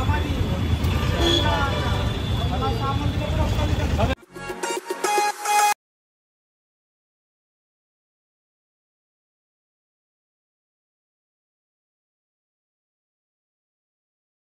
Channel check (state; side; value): identical; both; correlation 1.00